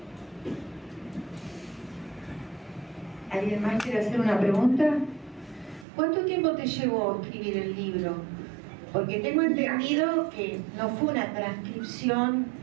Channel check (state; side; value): drops out; left; at 5.9 s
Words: ¿Alguien más quiere hacer una pregunta? ¿Cuánto tiempo te llevó escribir el libro? Porque tengo entendido que no fue una transcripción